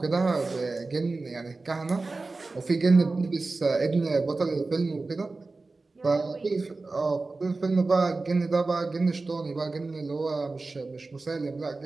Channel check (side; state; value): left; quieter; 3.6 dB